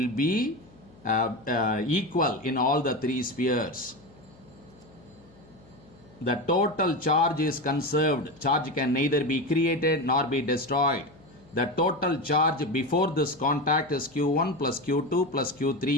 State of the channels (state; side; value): noise; left; hum, 26 dB below the sound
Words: be equal in all the 3 spheres. The total charge is conserved. Charge can neither be created nor be destroyed. The total charge before this contact is Q1 plus Q2 plus